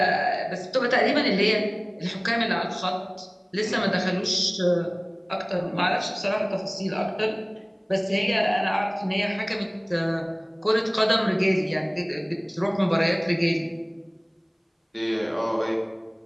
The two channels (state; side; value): identical; both; correlation 1.00